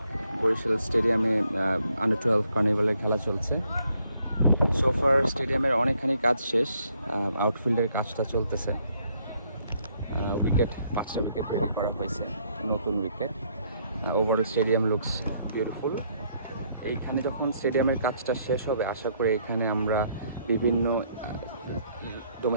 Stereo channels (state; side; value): inverted; both; correlation -0.69